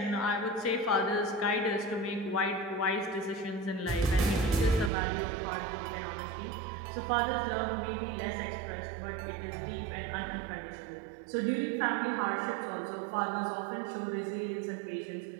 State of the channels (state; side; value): drops out; left; at 4.9 s